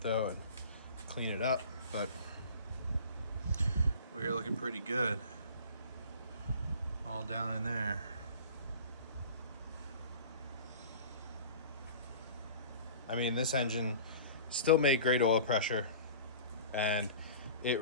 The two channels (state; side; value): inverted; both; correlation -0.41